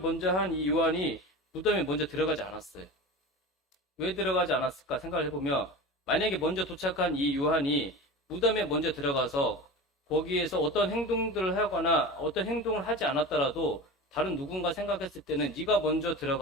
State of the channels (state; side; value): normal; both; correlation 0.30